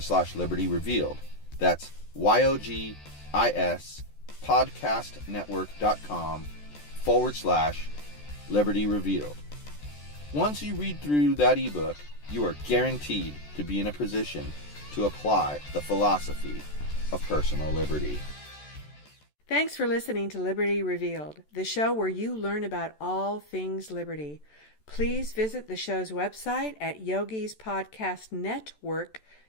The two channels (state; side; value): late; right; 14 ms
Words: Revealed. That's YOGISPODCAST yogispodcastnetwork.com/Liberty Revealed. Once you read through that ebook, you are guaranteed to be in a position to apply the philosophy of personal liberty. Thanks for listening to Liberty Revealed, the show where you learn about all things liberty. Please visit the show's website at